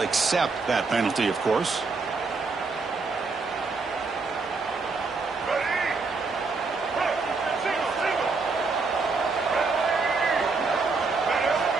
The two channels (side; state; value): left; quieter; 4.2 dB